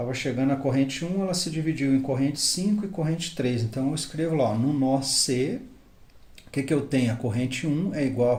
chegando a corrente 1, ela se dividiu em corrente 5 e corrente 3. Então, eu escrevo lá, no nó C, o que eu tenho? A corrente 1 é igual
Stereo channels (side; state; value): both; identical; correlation 1.00